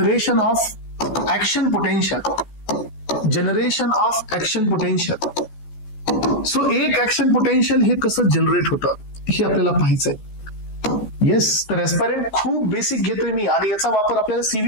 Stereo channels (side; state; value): right; late; 14 ms